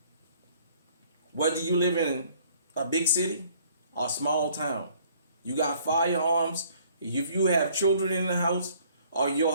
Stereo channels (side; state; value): both; inverted; correlation -0.59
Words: whether you live in a big city or small town, you got firearms. If you have children in the house, or